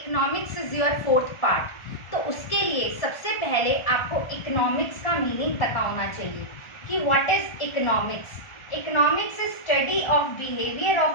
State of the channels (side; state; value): right; late; 1.4 ms